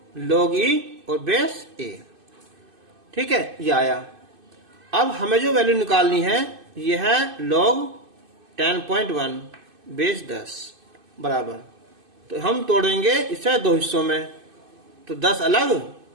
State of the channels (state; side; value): late; left; 2.5 ms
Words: log e और बेस a, ठीक है, ये आया। अब हमें जो वैल्यू निकालनी है ये है log 10.1 बेस 10 बराबर, तो हम तोड़ेंगे इसे दो हिस्सों में, तो 10 अलग